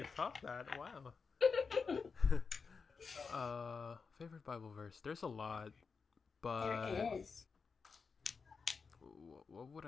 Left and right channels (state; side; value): quieter; right; 5.1 dB